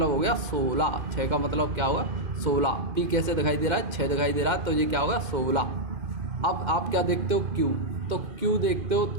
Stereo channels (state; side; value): late; left; 2.5 ms